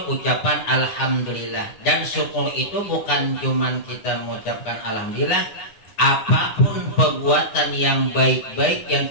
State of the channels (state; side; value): late; right; 9.6 ms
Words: ucapan alhamdulillah. Dan syukur itu bukan cuman kita mengucapkan alhamdulillah. Apapun perbuatan yang baik-baik yang